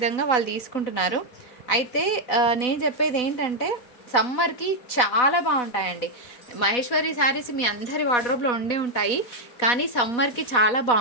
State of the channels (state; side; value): late; right; 4.2 ms